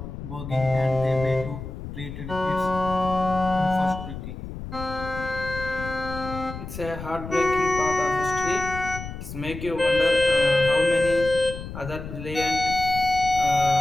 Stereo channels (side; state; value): left; noise; rumble, 10 dB below the sound